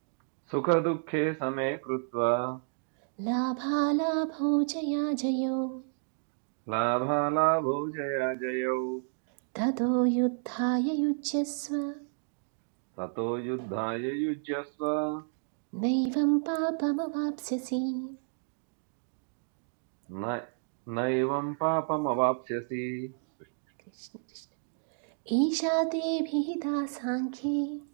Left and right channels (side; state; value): left; silent; digital silence